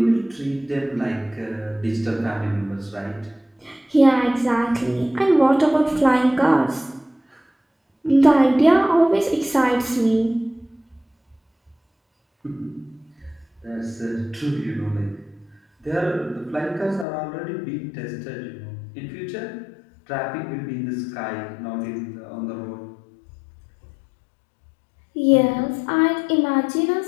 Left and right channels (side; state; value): right; drops out; at 17.1 s